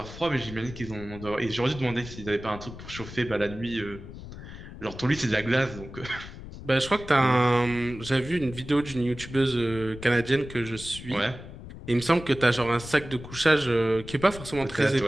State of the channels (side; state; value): left; noise; rumble, 13 dB below the sound